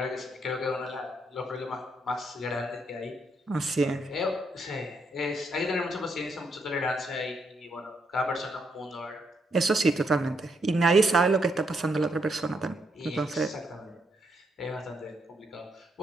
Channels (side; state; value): both; normal; correlation 0.76